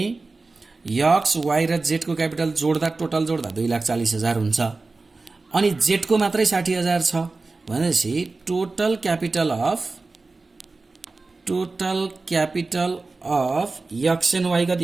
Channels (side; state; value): left; quieter; 3.7 dB